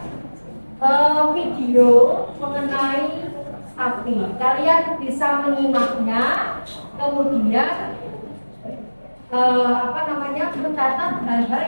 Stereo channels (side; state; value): both; inverted; correlation -1.00